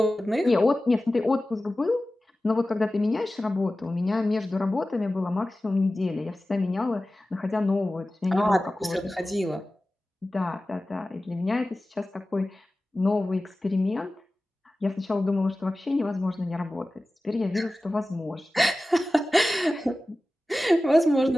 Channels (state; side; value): normal; both; correlation 0.96